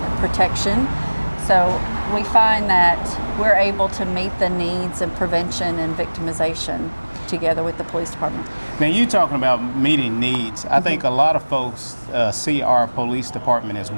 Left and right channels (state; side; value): inverted; both; correlation -1.00